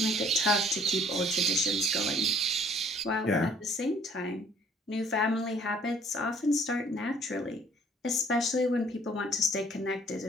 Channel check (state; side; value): normal; both; correlation 0.58